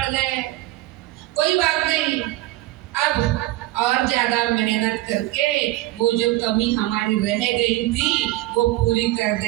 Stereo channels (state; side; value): quieter; left; 17.3 dB